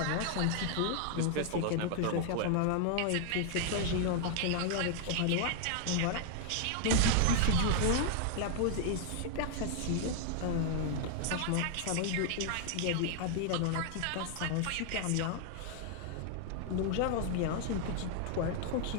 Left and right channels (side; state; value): both; different; correlation 0.00